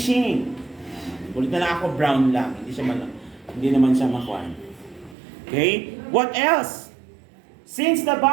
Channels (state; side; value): drops out; left; at 5.2 s